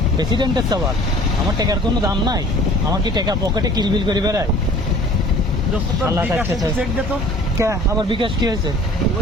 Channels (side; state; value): both; normal; correlation 0.49